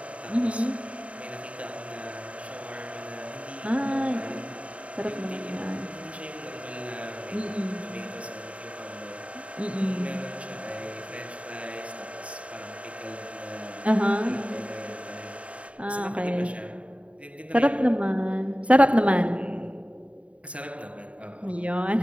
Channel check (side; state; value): left; late; 0.064 ms